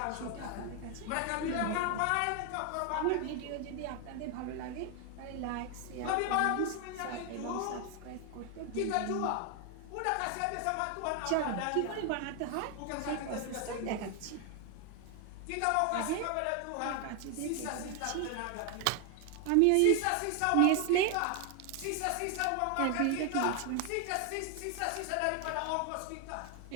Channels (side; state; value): both; different; correlation 0.01